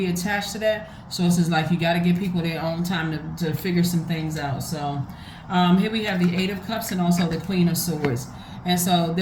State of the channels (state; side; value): identical; both; correlation 1.00